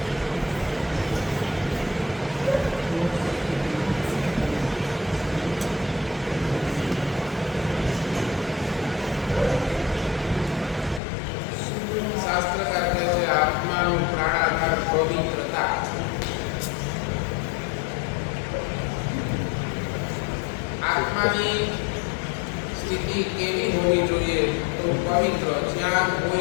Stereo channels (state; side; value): drops out; right; at 11.0 s